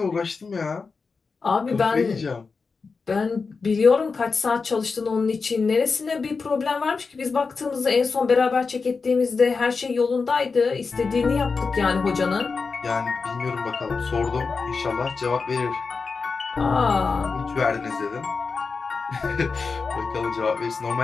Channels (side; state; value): right; quieter; 4.7 dB